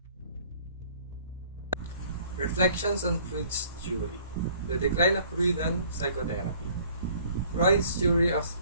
Reflections on Freud's theory. The decline of Freudian psychotherapy. Freud's theory of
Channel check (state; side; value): inverted; both; correlation -0.56